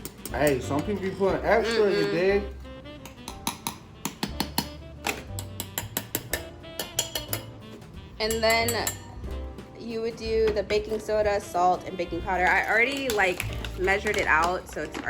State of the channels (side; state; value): both; identical; correlation 1.00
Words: Hey, some people be putting extra, you dig? And then you would do the baking soda, salt, and baking powder. I already like measured it out, so it's